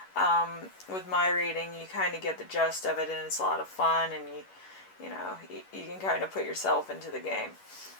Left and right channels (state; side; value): late; right; 11 ms